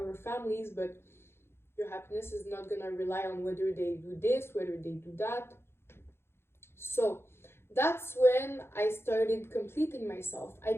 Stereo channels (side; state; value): right; late; 0.12 ms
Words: families, but your happiness is not gonna rely on whether they do this, whether they do that. So that's when I started completing myself. I